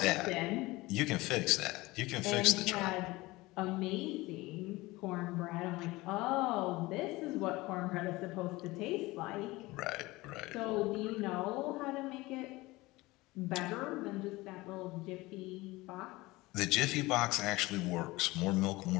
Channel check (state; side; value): quieter; right; 20.6 dB